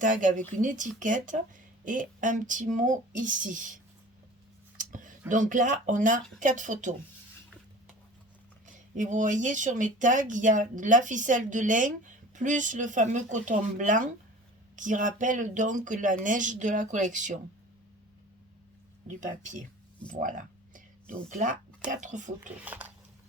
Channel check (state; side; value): normal; both; correlation 0.41